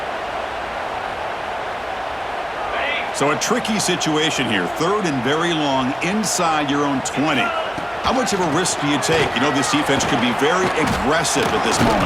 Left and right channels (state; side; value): identical; both; correlation 1.00